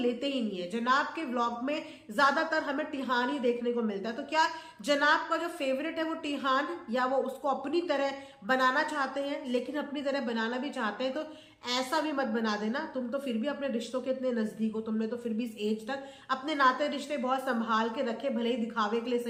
ही नहीं है। जनाब के व्लॉग में ज्यादातर हमें टिहान ही देखने को मिलता है। तो क्या जनाब का जो फेवरेट है वो टिहान, या वो उसको अपनी तरह बनाना चाहते हैं? लेकिन अपनी तरह बनाना भी चाहते हैं तो ऐसा भी मत बना देना, तुम तो फिर भी अपने रिश्तों के इतने नजदीक हो, तुमने तो फिर भी इस एज तक अपने नाते रिश्ते बहुत संभाल के रखे, भले ही दिखावे के लिए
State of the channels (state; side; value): identical; both; correlation 1.00